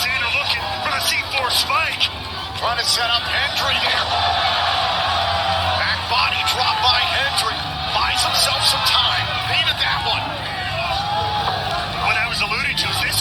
looking for the C4 spike. Trying to set up Hendry there. Back body drop by Hendry. Buys himself some time. Needed that one. What I was alluding to is this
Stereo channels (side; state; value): both; identical; correlation 1.00